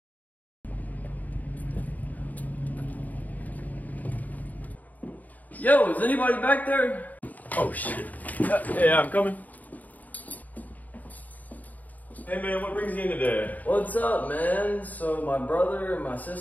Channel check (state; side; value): late; right; 0.078 ms